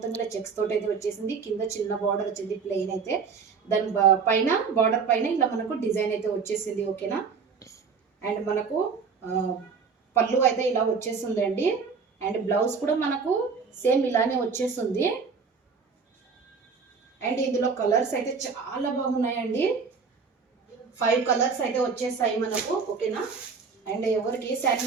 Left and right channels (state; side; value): quieter; left; 5.4 dB